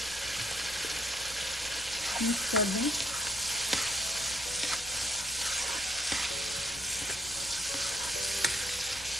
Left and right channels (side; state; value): left; noise; rumble, 20 dB below the sound